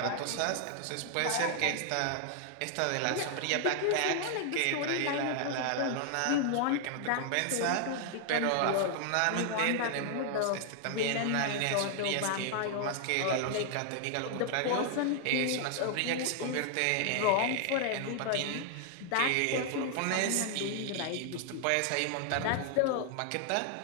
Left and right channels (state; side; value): different; both; correlation 0.00